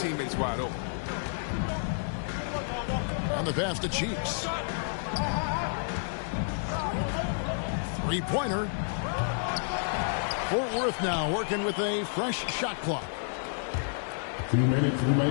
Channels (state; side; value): silent; right; digital silence